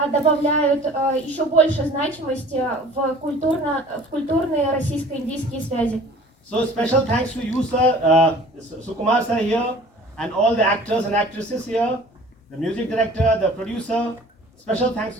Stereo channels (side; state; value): both; normal; correlation 0.47